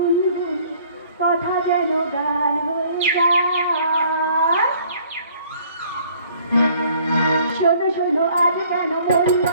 কথা যেন গান হয়ে যায়। শোনো শোনো আজ কেন মন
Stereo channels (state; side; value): inverted; both; correlation -0.57